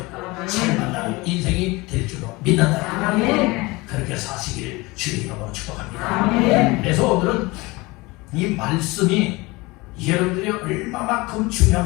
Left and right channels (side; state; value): right; quieter; 23.1 dB